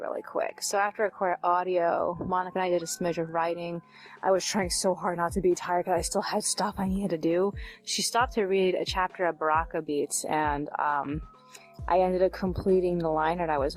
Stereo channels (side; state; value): both; identical; correlation 1.00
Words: really quick. So after I recorded audio, Monica and I did a smidge of writing. I was trying so hard not to be tired because I still had stuff I needed to do. She stopped to read a chapter of Baraka Beats, and I ended up completing the liner that I